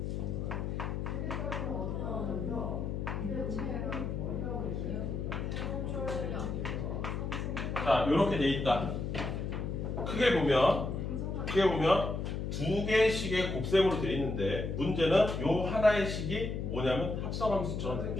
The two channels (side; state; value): left; noise; hum, 3 dB below the sound